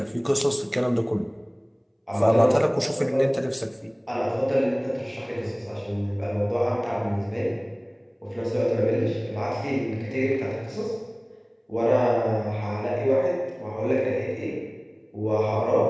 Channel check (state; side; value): identical; both; correlation 1.00